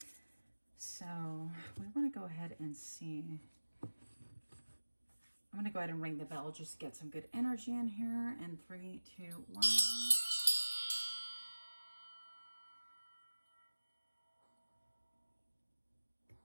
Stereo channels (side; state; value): both; inverted; correlation -1.00